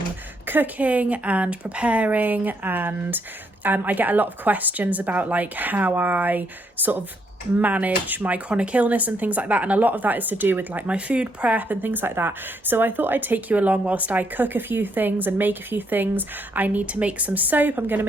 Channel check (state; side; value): normal; both; correlation 0.74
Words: cooking and preparing. And I get a lot of questions about like how I sort of manage my chronic illness and things like that, and a lot of that is to do with like my food prep and things like that. So I thought I'd take you along whilst I cook a few things and make a few things. I need to make some soap. I'm going to